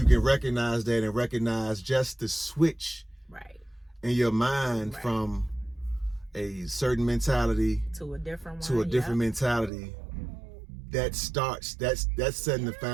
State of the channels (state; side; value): drops out; left; at 9.7 s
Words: can recognize that and recognize just the switch in your mind from a certain mentality to a different mentality, that's setting the